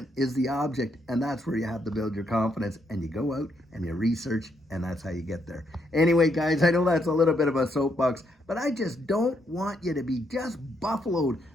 is the object, and that's where you have to build your confidence, and you go out and you research, and that's how you get there. Anyway, guys, I know that's a little bit of a soapbox, but I just don't want you to be just buffaloed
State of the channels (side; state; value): both; normal; correlation 0.76